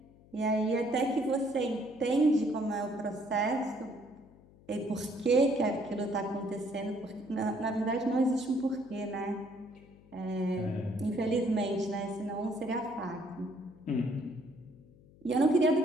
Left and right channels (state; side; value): noise; left; hum, 25 dB below the sound